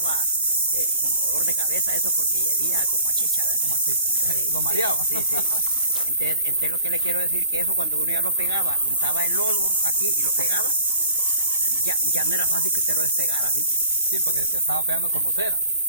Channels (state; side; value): inverted; both; correlation -0.46